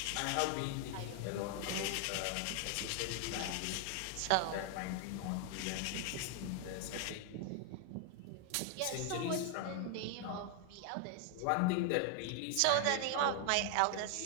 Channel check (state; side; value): different; both; correlation 0.00